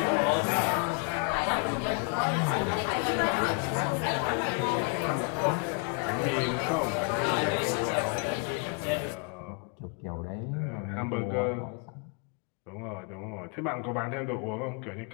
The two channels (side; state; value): right; quieter; 37.6 dB